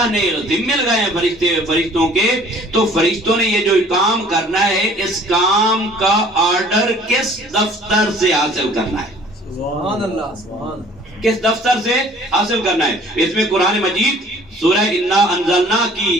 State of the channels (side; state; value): both; normal; correlation 0.53